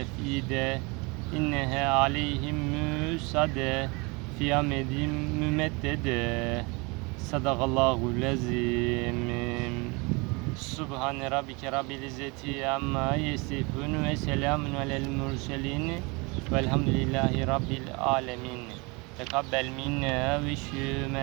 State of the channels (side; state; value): left; quieter; 28.0 dB